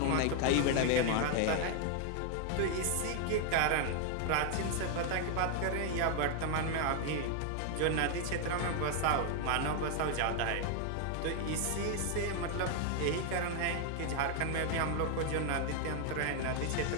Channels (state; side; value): different; both; correlation 0.00